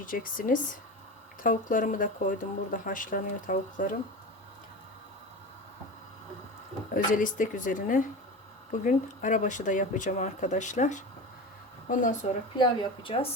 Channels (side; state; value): both; normal; correlation 0.28